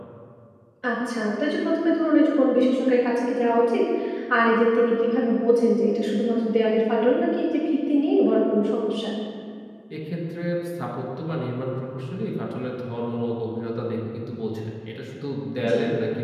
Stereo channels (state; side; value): identical; both; correlation 1.00